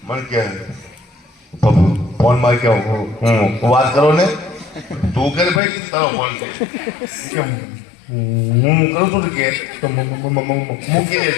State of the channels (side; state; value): right; drops out; at 5.6 s